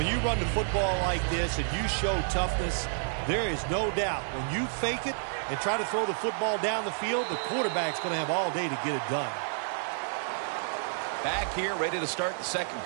you run the football like this and you show toughness, there is no doubt when you fake it and try to throw the football down the field, the quarterback's going to have all day to get it done. Back here, ready to start the second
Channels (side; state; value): left; silent; 58 dB below the other